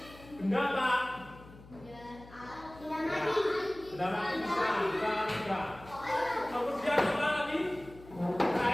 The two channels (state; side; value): noise; left; hum, 20 dB below the sound